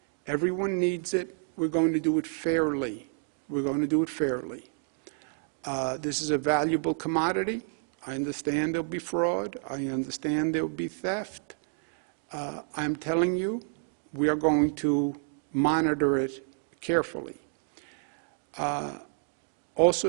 Everyone needs it. We're going to do it fairly. We're going to do it fairly. This is a valuable commodity. I understand there'll be fraud. I understand there'll be theft. I'm telling you, we are going to monitor it carefully.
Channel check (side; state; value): left; silent; 58 dB below the other